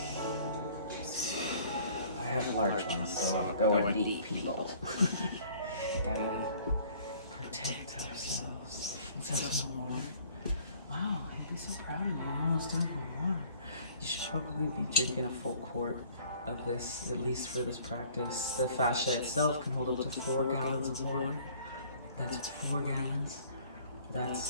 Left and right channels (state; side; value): inverted; both; correlation -0.55